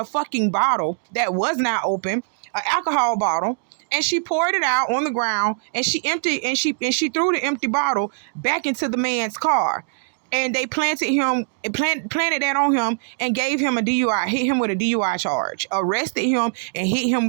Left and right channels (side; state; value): left; silent; 64 dB below the other